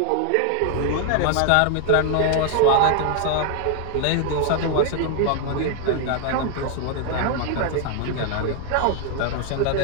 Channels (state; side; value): different; both; correlation 0.00